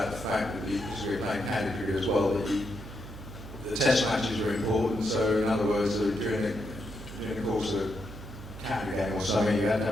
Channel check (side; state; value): right; noise; hum, 13 dB below the sound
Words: the fact that because we were playing county cricket as well, that the test matches were important. So, in other words, during the course of a county game or something, you had to